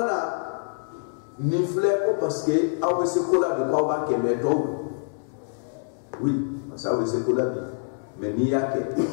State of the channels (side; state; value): right; silent; digital silence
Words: ni fle ko parce que aw se kola de ko ba ke me to oui parce aw se kola bi mais ni yake